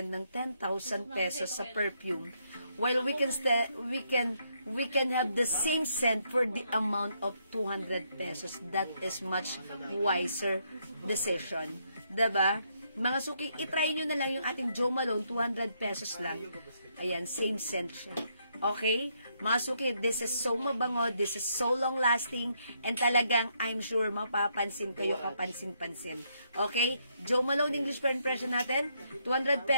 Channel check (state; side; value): inverted; both; correlation -0.75